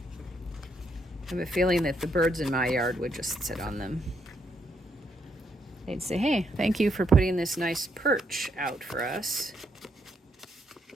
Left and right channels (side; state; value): both; normal; correlation 0.76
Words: I have a feeling that the birds in my yard would just sit on them. They'd say, hey, thank you for putting this nice perch out for us.